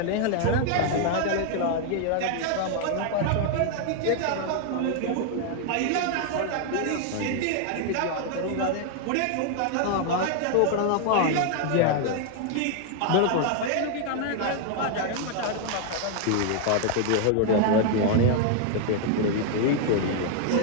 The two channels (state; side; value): different; both; correlation 0.00